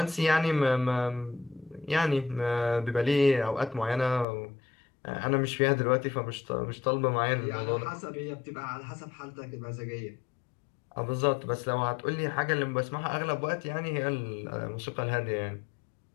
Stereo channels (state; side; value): drops out; right; at 4.2 s